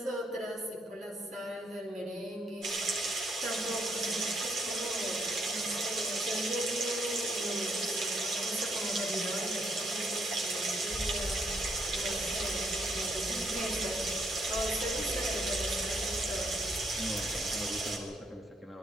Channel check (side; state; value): both; normal; correlation 0.73